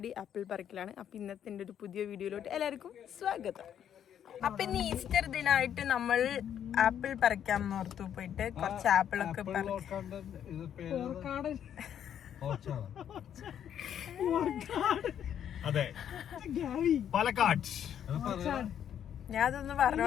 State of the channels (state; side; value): quieter; right; 9.5 dB